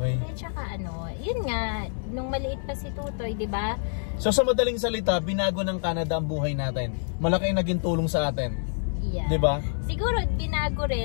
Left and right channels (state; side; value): silent; right; digital silence